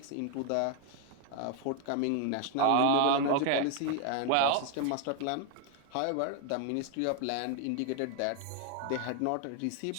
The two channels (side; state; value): both; different; correlation 0.00